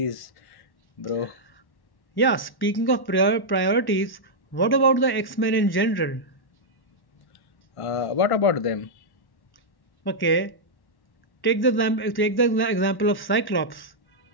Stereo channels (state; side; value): late; right; 1.1 ms